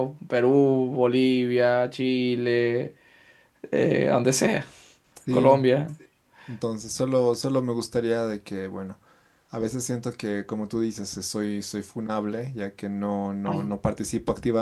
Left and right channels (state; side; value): identical; both; correlation 1.00